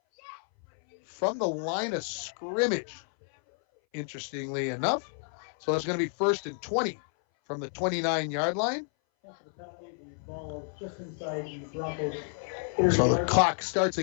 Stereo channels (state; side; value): silent; right; 58 dB below the other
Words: from the line of scrimmage, interestingly enough. So it's going to be 1st and 20 from the 29-yard line. So the clock starts